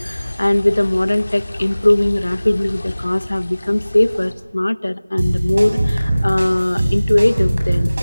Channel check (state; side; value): inverted; both; correlation -0.99